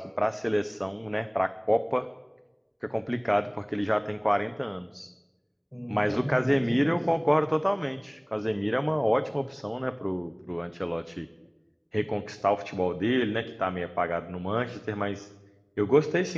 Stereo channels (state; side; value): identical; both; correlation 1.00